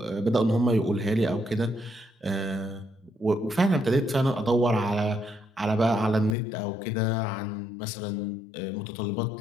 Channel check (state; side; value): drops out; right; at 6.4 s